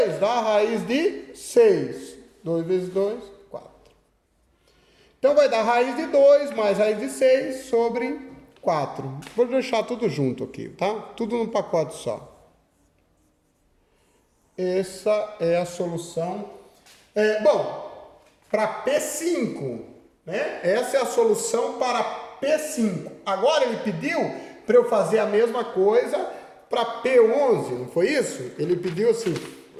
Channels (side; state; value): both; identical; correlation 1.00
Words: dá a raiz de 6. 2 vezes 2, 4. Então vai dar raiz de 2 mais raiz de 6 sobre 4. Vou deixar tudo junto aqui, tá? Tudo num pacote só. Essa é a solução. Bom, para P5, né? Essa é a solução para P5. Agora ele pediu para eu fazer a mesma coisa para P11, não foi isso? Ele pediu assim,